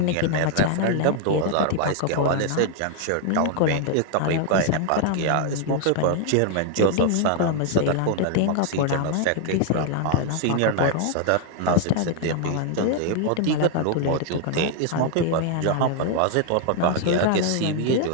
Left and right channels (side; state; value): both; different; correlation 0.00